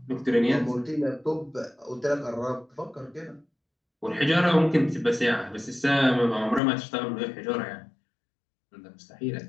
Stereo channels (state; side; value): drops out; right; at 6.6 s